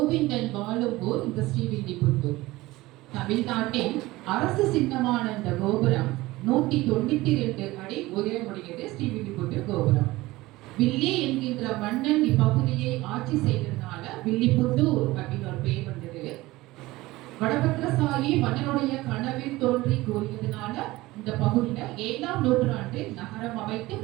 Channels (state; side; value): quieter; left; 19.1 dB